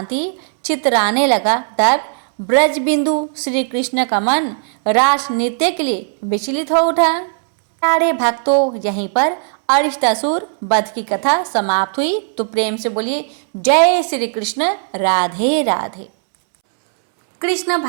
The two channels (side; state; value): left; silent; 68 dB below the other